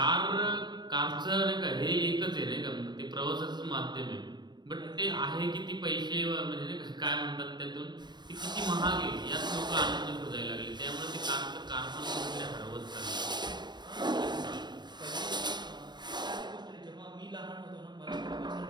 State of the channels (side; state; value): left; late; 0.21 ms